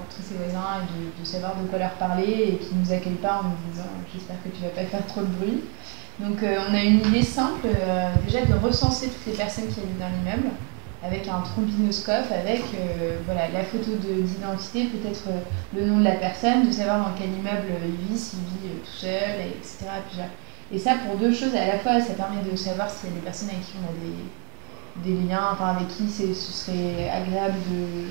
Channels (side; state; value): left; quieter; 37.9 dB